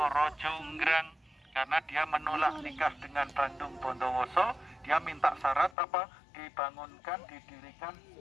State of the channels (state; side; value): drops out; right; at 5.8 s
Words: Jonggrang. Karena dia menolak nikah dengan Bandung Bondowoso, dia minta syarat apa? Dibangunkan, didirikan